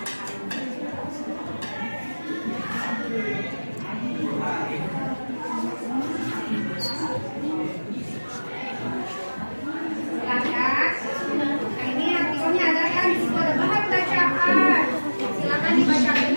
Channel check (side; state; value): both; inverted; correlation -1.00